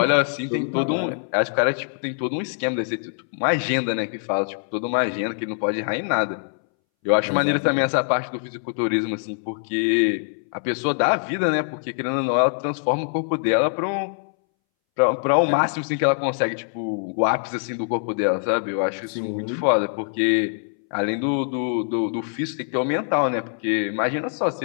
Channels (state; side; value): silent; right; 63 dB below the other